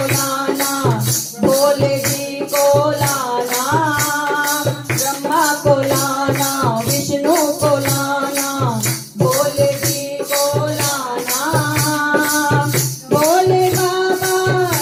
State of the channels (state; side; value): identical; both; correlation 1.00